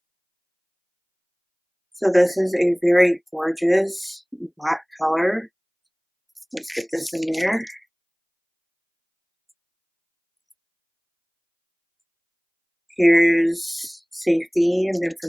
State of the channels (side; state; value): both; identical; correlation 1.00